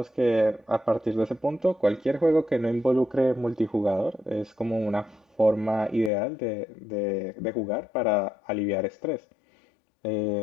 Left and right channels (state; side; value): drops out; right; at 6.1 s